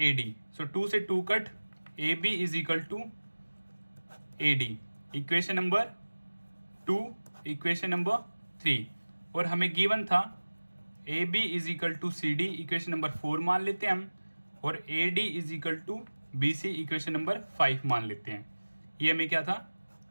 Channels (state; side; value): inverted; both; correlation -1.00